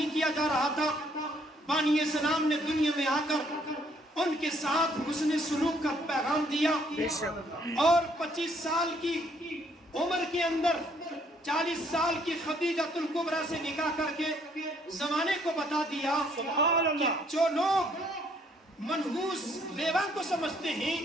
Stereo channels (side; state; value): both; normal; correlation 0.66